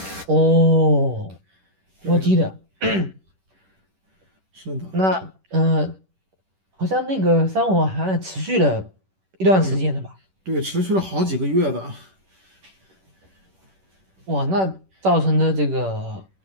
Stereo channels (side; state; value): left; late; 10 ms